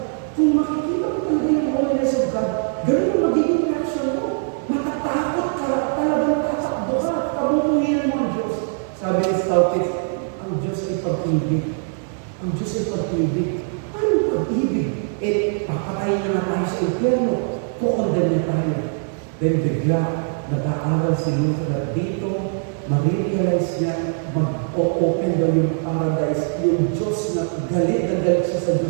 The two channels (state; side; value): silent; left; 64 dB below the other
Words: Kung makikita mo talaga yung holiness of God, ganun ang magiging reaction mo. Matatakot ka, talagang tatakbo ka, kabubuhin mo ang Diyos. Sabi ni Staupitz, ang Diyos ay pag-ibig. Ang Diyos ay pag-ibig. Anong pag-ibig? Papatayin na nga tayo sa impyerno. Kukondem na tayo. Then bigla, nag-aaral si Luther at dito, ma-realize niya, mag-open daw yung paradise, yung Diyos na galit siya sa